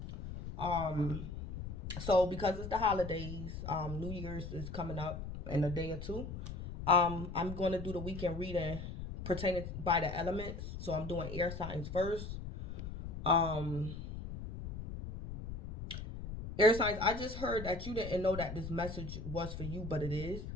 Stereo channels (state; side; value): noise; left; rumble, 8 dB below the sound